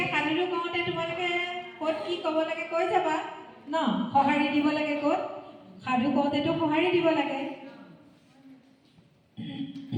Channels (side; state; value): both; identical; correlation 1.00